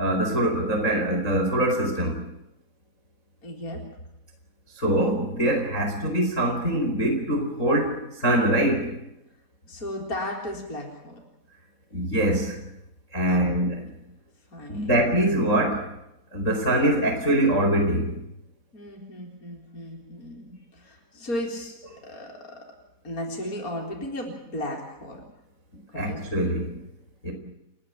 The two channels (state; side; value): late; right; 4.1 ms